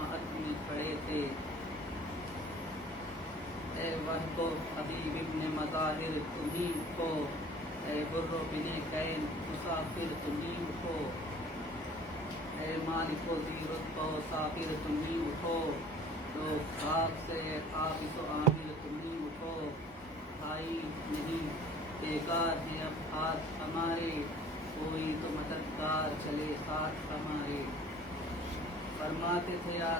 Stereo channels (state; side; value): normal; both; correlation 0.49